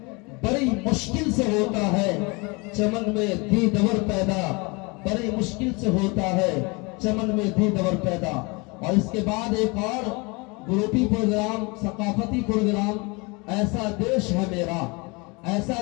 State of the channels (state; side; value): quieter; right; 28.0 dB